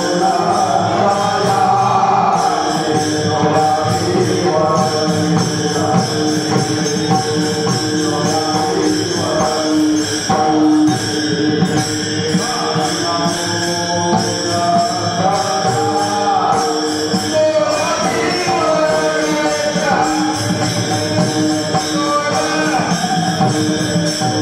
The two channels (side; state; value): both; identical; correlation 1.00